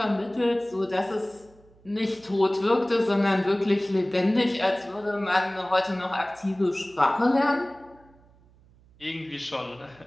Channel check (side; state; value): right; noise; hum, 28 dB below the sound